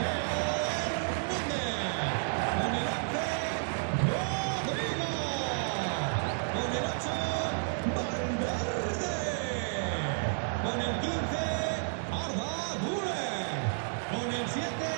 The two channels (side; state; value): left; silent; digital silence